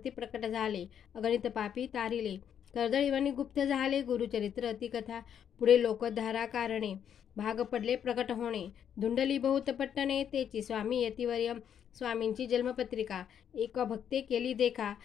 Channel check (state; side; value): quieter; right; 8.8 dB